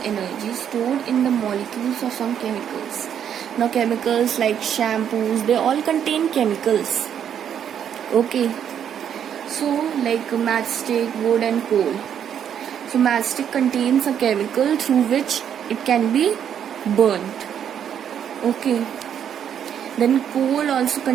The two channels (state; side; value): quieter; left; 8.9 dB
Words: energy stored in the molecules of some chemicals. Now chemicals like shampoos, they all contain chemicals. Okay, so like matchstick, wood and coal. So matchstick contains a chemical through which it can be burnt. Okay, then coal also